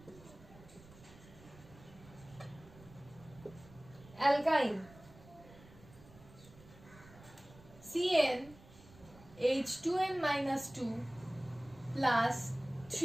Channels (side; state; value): right; noise; rumble, 21 dB below the sound